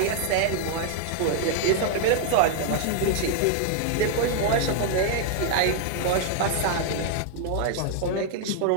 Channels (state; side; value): different; both; correlation 0.00